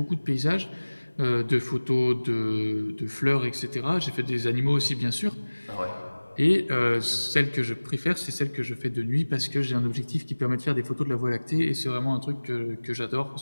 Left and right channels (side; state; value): both; inverted; correlation -1.00